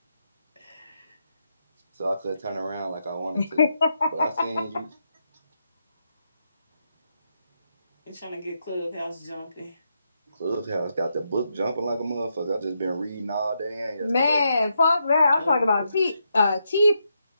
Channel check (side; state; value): both; inverted; correlation -0.82